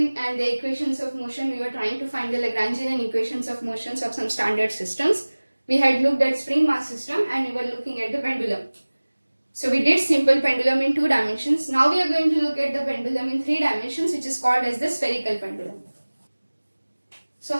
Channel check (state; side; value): inverted; both; correlation -1.00